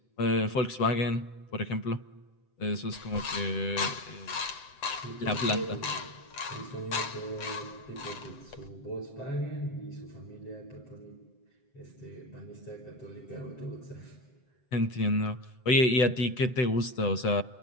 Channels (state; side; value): late; right; 7.8 ms